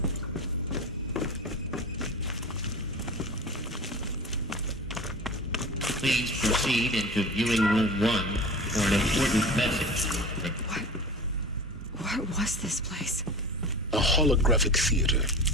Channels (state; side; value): normal; both; correlation 0.34